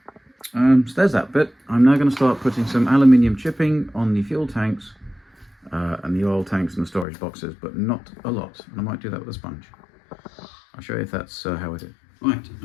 So there's that bit. I'm now going to start putting some aluminium chipping on the fuel tanks and the oil tanks and the storage boxes, but not a lot. And I might do that with a sponge. I'll show you if that's how I do. Right,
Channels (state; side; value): drops out; right; at 7.1 s